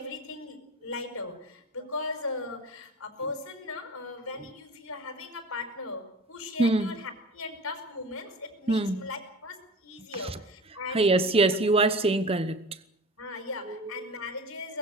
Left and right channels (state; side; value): normal; both; correlation 0.36